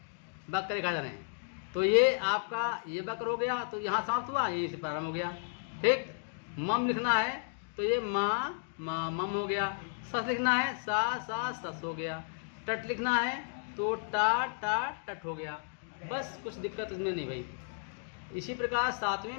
वक्र रेखाक्षर हैं। तो ये आपका ये वक्र हो गया, तो यहाँ समाप्त हुआ, ये से प्रारंभ हो गया। ठीक, मम लिखना है तो ये माँ माँ मम हो गया। सस लिखना है सा सा सस हो गया। टट लिखना है तो टा टा टट हो गया। बस कुछ दिक्कत इसमें नहीं भाई। इसी प्रकार सातवें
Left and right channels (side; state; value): right; silent; digital silence